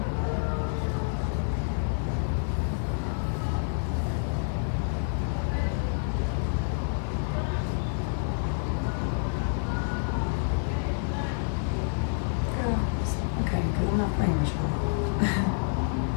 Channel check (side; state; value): right; silent; digital silence